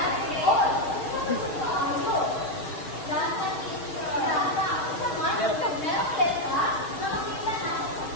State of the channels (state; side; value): late; right; 6.5 ms